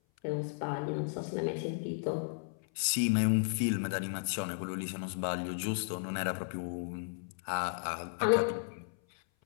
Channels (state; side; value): silent; right; 55 dB below the other